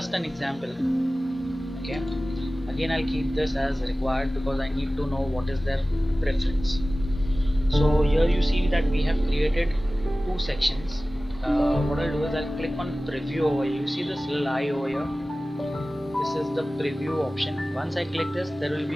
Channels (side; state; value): both; normal; correlation 0.97